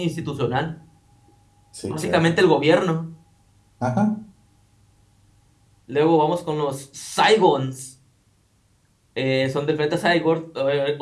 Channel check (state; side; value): identical; both; correlation 1.00